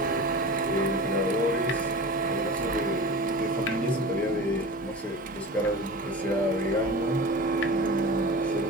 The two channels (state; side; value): normal; both; correlation 0.34